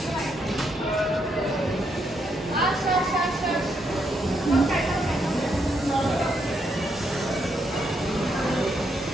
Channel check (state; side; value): normal; both; correlation 0.77